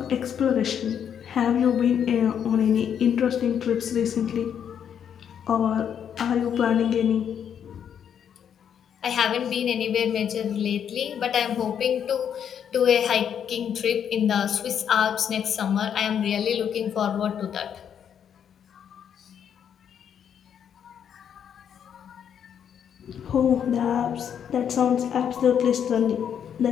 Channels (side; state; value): right; quieter; 8.5 dB